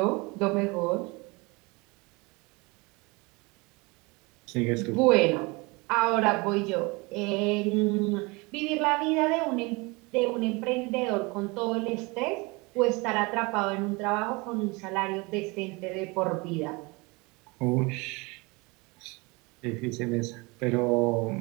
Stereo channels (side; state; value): left; quieter; 26.3 dB